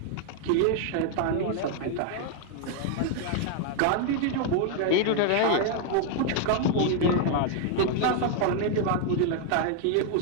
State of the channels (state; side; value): different; both; correlation 0.00